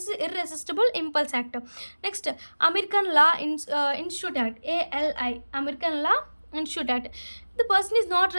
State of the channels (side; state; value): both; inverted; correlation -1.00